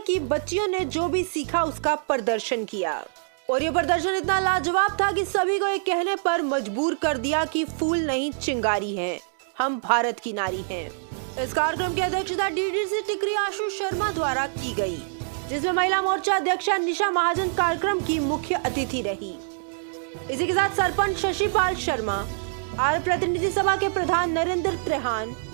की बच्चियों ने जो भी सीखा उसका प्रदर्शन किया और ये प्रदर्शन इतना लाजवाब था कि सभी को ये कहने पर मजबूर कर दिया कि फूल नहीं चिंगारी हैं, हम भारत की नारी हैं। इस कार्यक्रम की अध्यक्षता डीडीसी टिकरी आशु शर्मा द्वारा की गई, जिसमें महिला मोर्चा अध्यक्षा निशा महाजन कार्यक्रम की मुख्य अतिथि रही। इसी के साथ सरपंच शशिपाल शर्मा, आर्य प्रतिनिधि सभा के प्रधान नरेंद्र त्रेहान,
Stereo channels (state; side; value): silent; left; digital silence